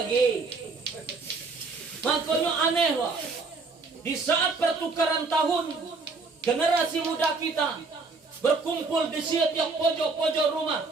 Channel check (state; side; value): quieter; left; 4.1 dB